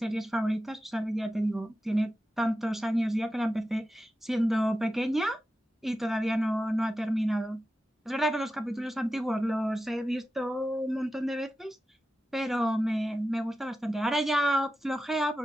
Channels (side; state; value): both; normal; correlation 0.92